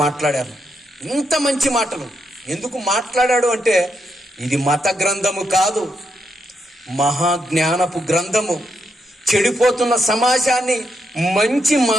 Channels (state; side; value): normal; both; correlation 0.81